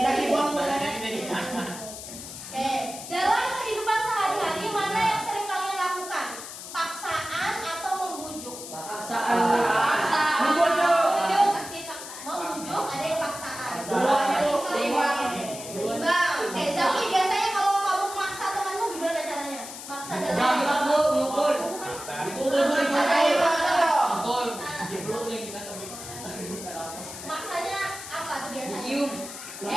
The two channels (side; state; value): left; noise; hiss, 11 dB below the sound